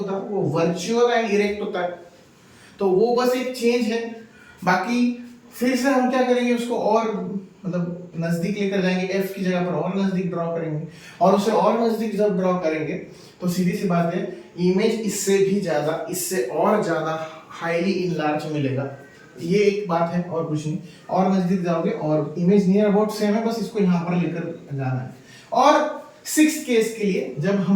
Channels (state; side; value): identical; both; correlation 1.00